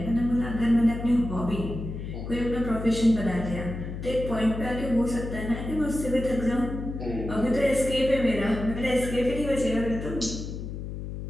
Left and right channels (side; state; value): left; noise; hum, 7 dB below the sound